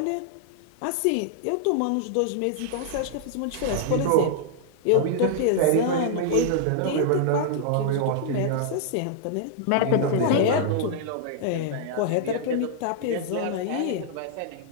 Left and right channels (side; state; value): both; different; correlation -0.01